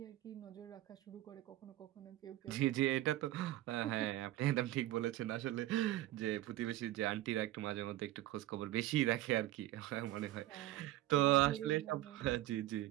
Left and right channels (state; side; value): quieter; left; 15.1 dB